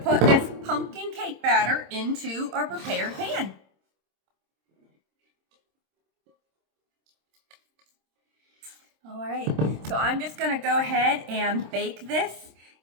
this pumpkin cake batter into our prepared pan. All right, so I'm just going to go ahead and bake this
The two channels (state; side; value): late; left; 26 ms